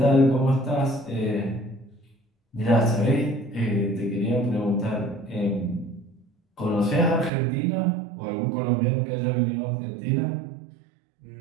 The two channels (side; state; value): left; drops out; at 7.3 s